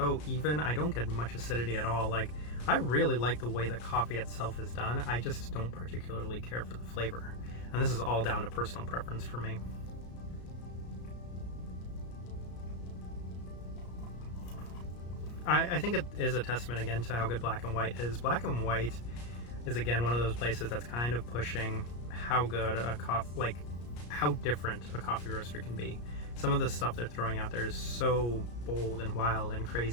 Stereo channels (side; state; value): right; late; 34 ms